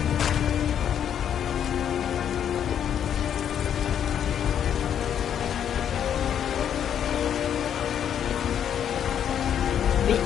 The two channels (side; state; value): right; quieter; 9.1 dB